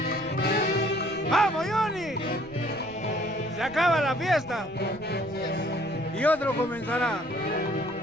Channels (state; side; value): noise; right; rumble, 23 dB below the sound